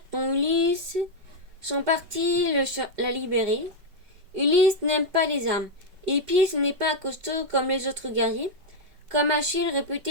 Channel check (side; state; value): left; late; 5.3 ms